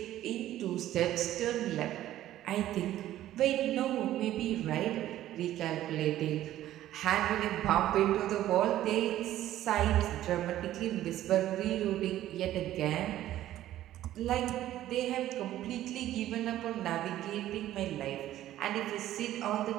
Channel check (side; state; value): left; quieter; 13.4 dB